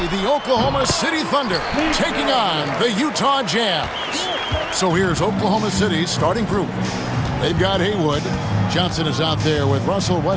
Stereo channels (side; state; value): both; identical; correlation 1.00